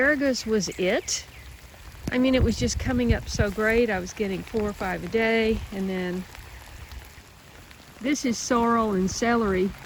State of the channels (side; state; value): both; identical; correlation 1.00